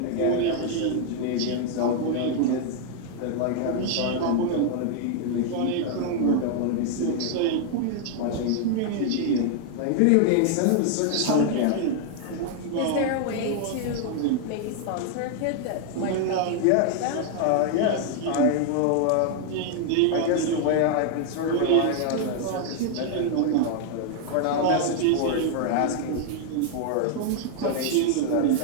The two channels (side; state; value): both; different; correlation 0.00